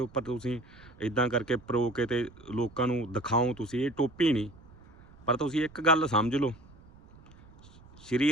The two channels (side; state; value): right; noise; rumble, 23 dB below the sound